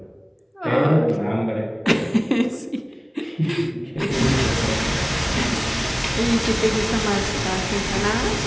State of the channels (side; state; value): both; identical; correlation 1.00